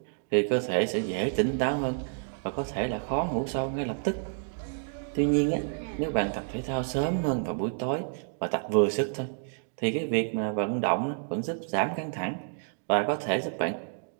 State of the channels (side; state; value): left; silent; digital silence